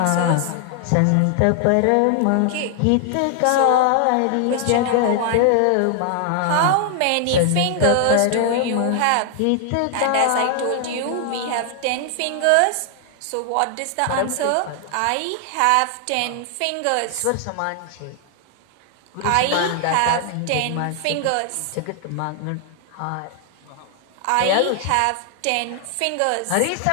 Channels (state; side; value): different; both; correlation 0.00